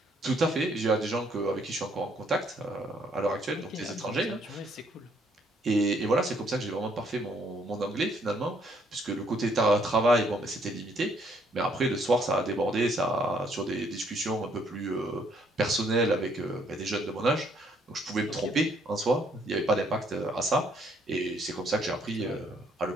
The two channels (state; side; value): normal; both; correlation 0.68